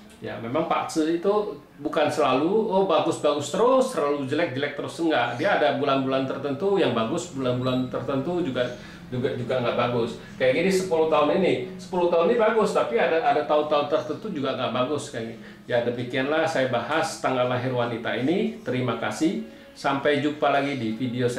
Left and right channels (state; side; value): identical; both; correlation 1.00